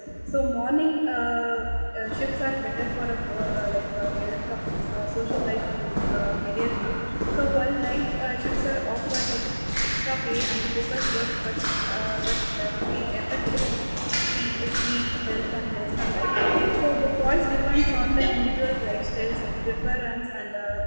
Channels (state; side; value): inverted; both; correlation -1.00